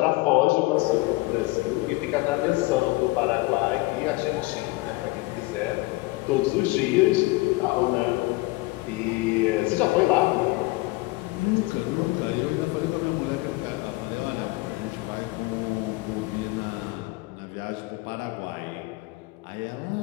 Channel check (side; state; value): right; quieter; 22.1 dB